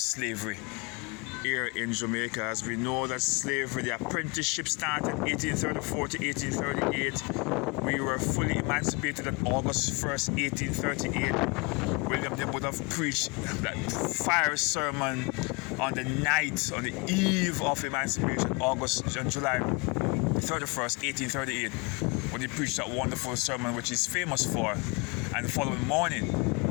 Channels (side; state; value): right; quieter; 29.0 dB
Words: here in Jamaica. As we know that slavery, the apprenticeship started 1834 to 1838. We were fully emancipated on August 1st, 1838. William Knibb would have preached that fiery sermon on the eve of emancipation, July 31st, 1838, when he preached that wonderful sermon which he's famous for. And the following morning,